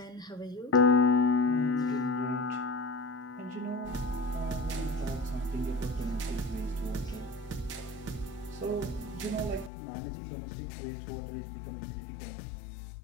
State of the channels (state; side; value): drops out; right; at 9.7 s